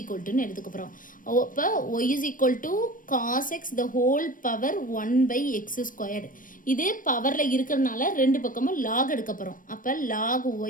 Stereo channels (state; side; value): late; right; 0.39 ms